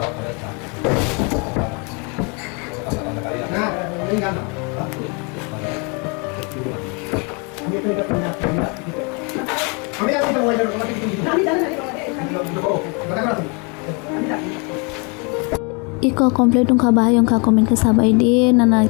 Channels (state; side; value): quieter; right; 33.1 dB